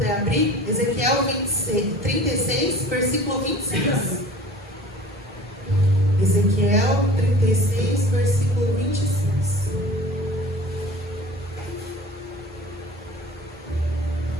abrir, Ezequiel 36, versículo 26. Ezequiel 36, versículo 26.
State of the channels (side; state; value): both; normal; correlation 0.43